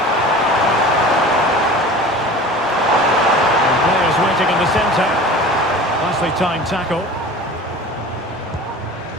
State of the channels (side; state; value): both; normal; correlation 0.39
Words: Waiting in the centre. Nicely timed tackle.